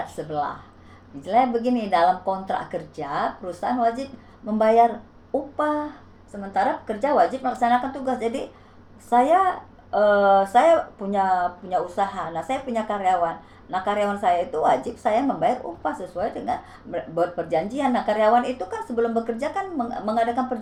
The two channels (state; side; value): identical; both; correlation 1.00